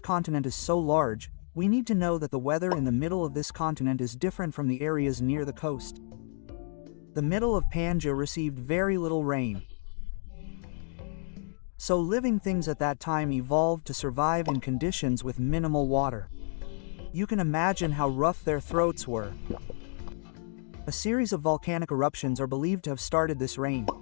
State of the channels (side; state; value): right; silent; 58 dB below the other